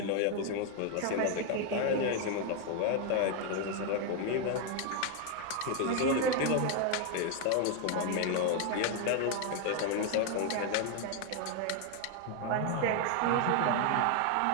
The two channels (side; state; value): both; different; correlation 0.01